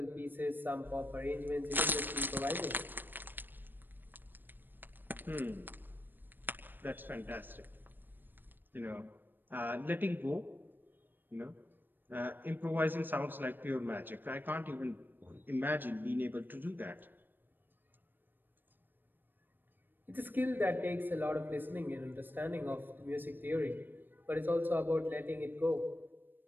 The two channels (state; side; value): late; left; 0.093 ms